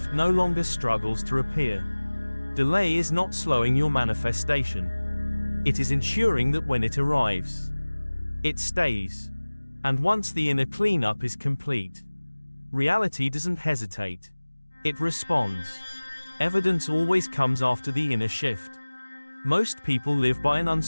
no longer struggles to appear. Delay is not slowing your manifestation. It is ensuring that when it arrives, it stays. And once the inner cleanup is complete, reality doesn't hesitate. It responds. Evidence always comes after the inner shift. Most people live by an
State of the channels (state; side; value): inverted; both; correlation -1.00